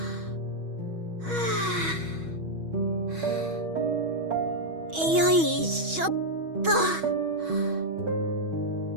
よいしょっと。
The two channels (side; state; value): left; late; 6.2 ms